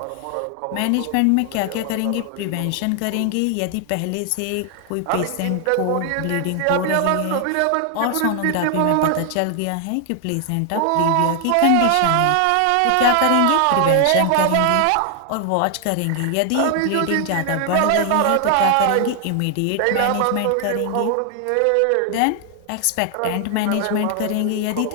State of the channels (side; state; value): both; different; correlation 0.00